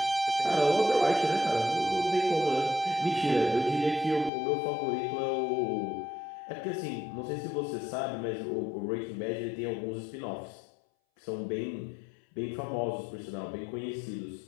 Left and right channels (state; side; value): drops out; right; at 4.3 s